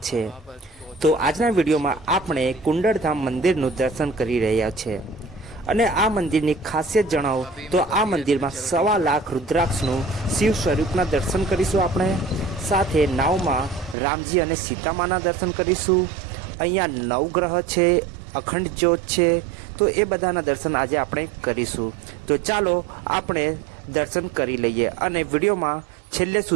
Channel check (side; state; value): left; drops out; at 14.0 s